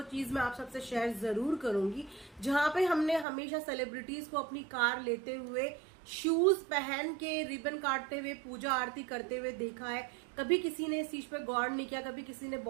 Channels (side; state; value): left; drops out; at 3.2 s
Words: चीज मैं आप सबसे शेयर जरूर करूंगी, जहां पे हमने हमेशा सेलिब्रिटीज को अपनी कार लेते हुए शूज पहन के रिबन काटते हुए पूजा आरती करते हुए देखा है। कभी किसी ने इस चीज पे गौर नहीं किया, कभी किसी ने